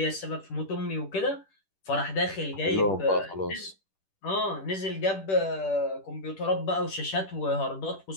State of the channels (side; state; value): right; late; 10 ms